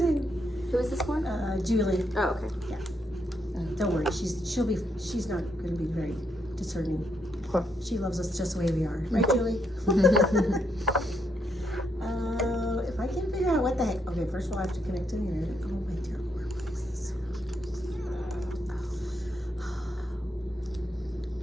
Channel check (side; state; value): both; normal; correlation 0.77